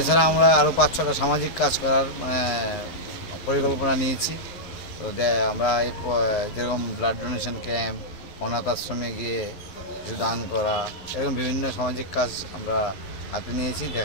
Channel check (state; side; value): late; right; 11 ms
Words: আমরা আরও 5-6টা সামাজিক কাজ করার পরিকল্পনা নিয়েছি। তো আমরা এই যেরকম ব্লাড ডোনেশন ক্যাম্প, অনাথ আশ্রমে গিয়ে কিছু দান করা, এরকম বিভিন্ন সামাজিক কাজ আমরা হাতে নিয়েছি।